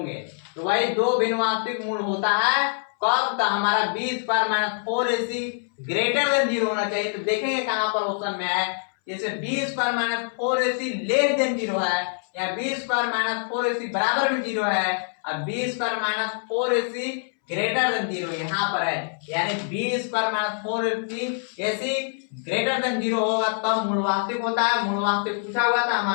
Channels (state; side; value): silent; right; 62 dB below the other